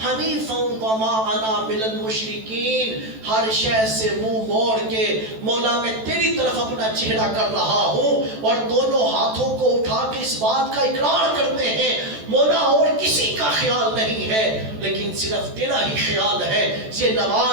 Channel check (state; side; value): late; left; 14 ms